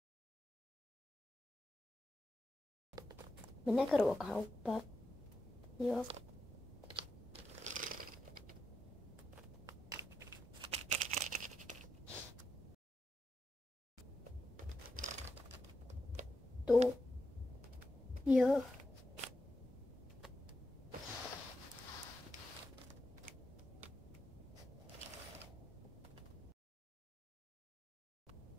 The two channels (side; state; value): both; normal; correlation 0.86